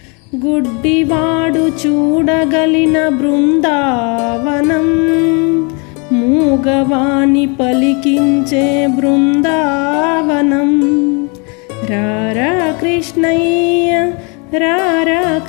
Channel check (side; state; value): right; quieter; 33.0 dB